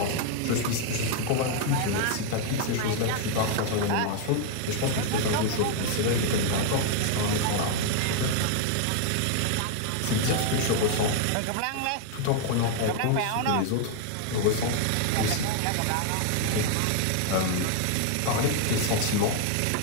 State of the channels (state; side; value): different; both; correlation 0.00